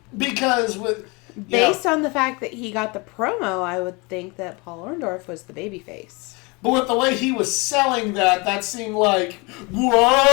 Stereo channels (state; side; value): quieter; right; 27.8 dB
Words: Because with... Based on the fact that he got the promo, I would think that Paul Orndorff was the babyface. But with the way he was selling that seemed like,